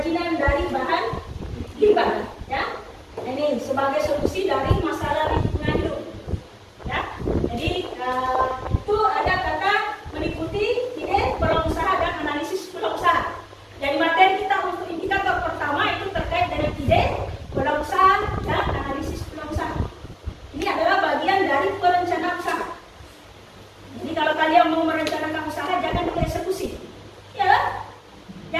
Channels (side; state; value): both; identical; correlation 1.00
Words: dari bahan limbah. Ya, ini sebagai solusi dari masalah lingkungan hidup. Ya, jadi itu ada kata meliputi ide peluang usaha dan analisis peluang usaha. Jadi materi kita untuk indikator pertama itu terkait dengan ide peluang usaha dan analisis peluang usaha. Ini adalah bagian dari perencanaan usaha. Jadi kalau kalian mau merencanakan usaha jangan dulu eksekusi, ya,